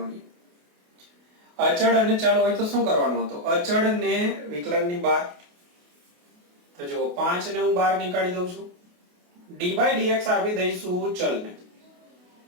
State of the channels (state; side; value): late; left; 28 ms